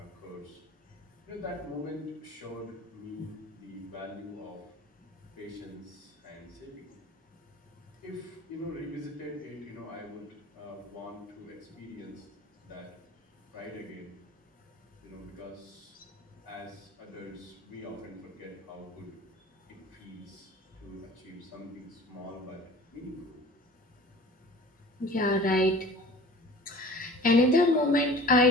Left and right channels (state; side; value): normal; both; correlation 0.43